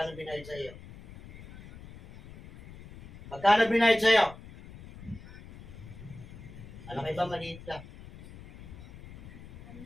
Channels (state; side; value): noise; left; rumble, 17 dB below the sound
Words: binayad sa iyo? Magkano binayad sa iyo? Alam kayo ba, maliit lang.